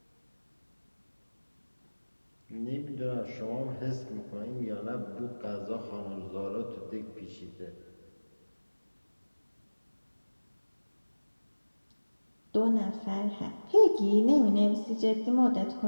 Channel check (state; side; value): inverted; both; correlation -1.00